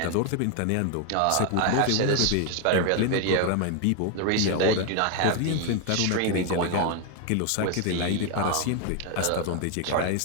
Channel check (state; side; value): different; both; correlation 0.01